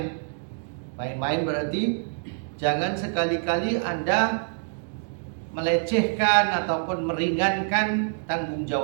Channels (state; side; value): silent; left; digital silence